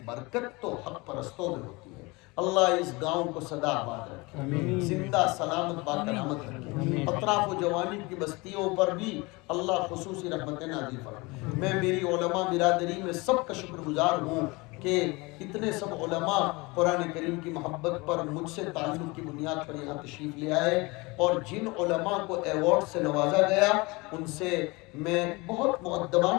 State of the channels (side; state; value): right; quieter; 25.0 dB